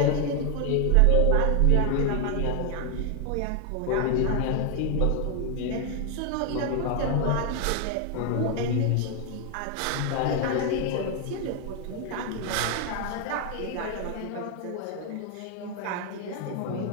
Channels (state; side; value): different; both; correlation 0.00